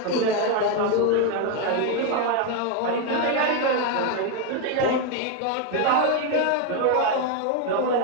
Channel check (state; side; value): different; both; correlation 0.02